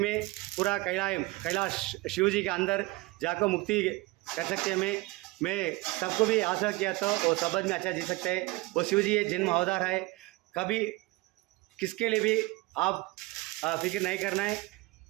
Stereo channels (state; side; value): quieter; left; 21.5 dB